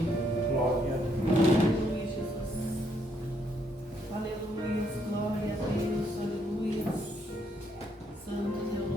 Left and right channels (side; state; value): both; normal; correlation 0.73